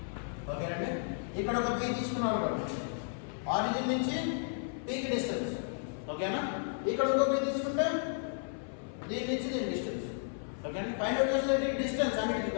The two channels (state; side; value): silent; right; 55 dB below the other